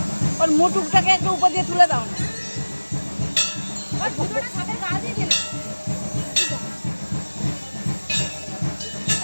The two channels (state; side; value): inverted; both; correlation -1.00